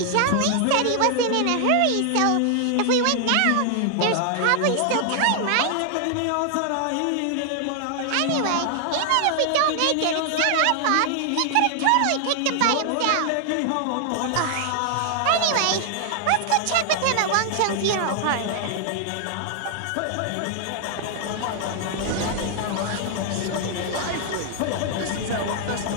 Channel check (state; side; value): different; both; correlation 0.00